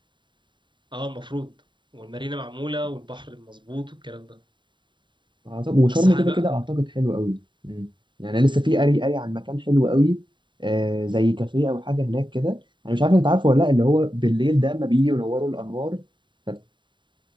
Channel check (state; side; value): late; left; 0.23 ms